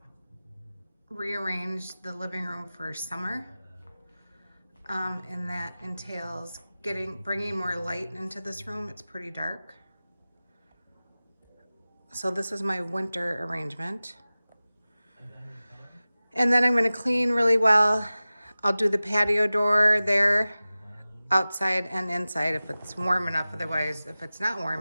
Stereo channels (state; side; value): inverted; both; correlation -0.97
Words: rearrange the living room for summer, and that entails bringing more light into this room. It's pretty dark. So this is my winter arrangement. And then I'm going to clean really well. I'll do the patio door there, outside and inside if it's warm enough. Otherwise, if it's not